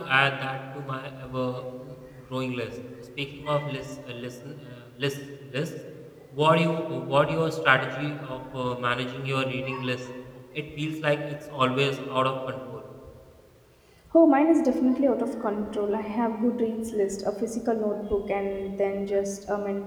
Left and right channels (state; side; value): identical; both; correlation 1.00